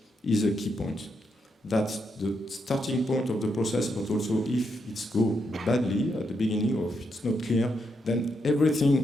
is a key point. That's the starting point of the process, but also if it's go badly at the beginning, or if it's not clear, then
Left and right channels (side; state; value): both; normal; correlation 0.80